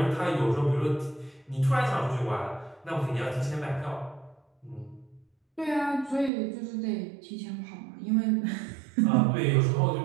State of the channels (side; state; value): left; drops out; at 6.3 s